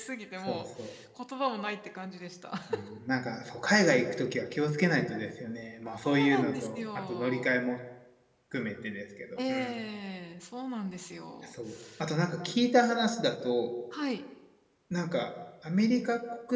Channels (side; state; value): both; identical; correlation 1.00